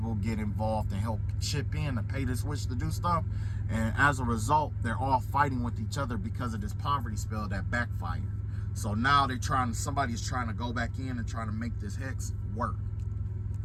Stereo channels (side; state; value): both; identical; correlation 1.00